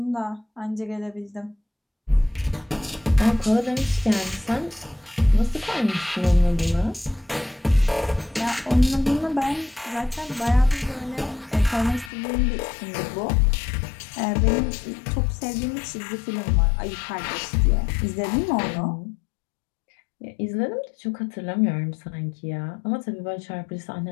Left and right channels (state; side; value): drops out; right; at 12.1 s